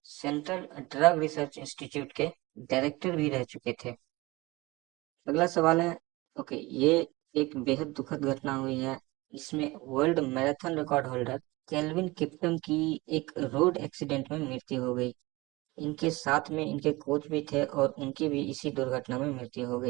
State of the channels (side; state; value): left; quieter; 22.0 dB